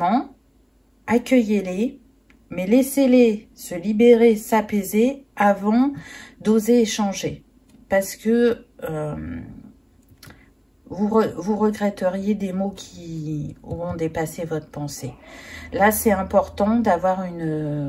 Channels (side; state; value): both; identical; correlation 1.00